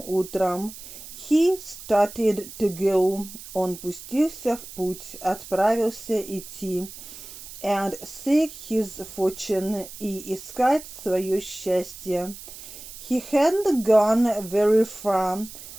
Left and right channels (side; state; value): right; noise; hiss, 14 dB below the sound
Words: утром, he started to go, он пустился в путь, отправился идти. And seek his fortune, и искать свое счастье. He hadn't gone very far,